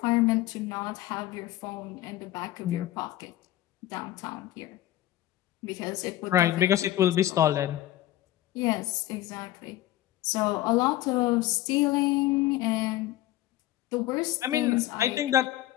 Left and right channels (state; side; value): quieter; right; 14.5 dB